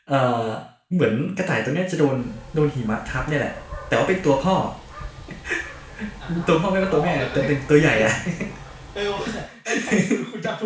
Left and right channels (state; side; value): identical; both; correlation 1.00